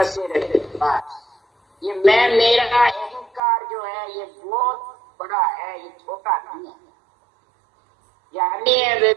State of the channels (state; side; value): drops out; left; at 3.4 s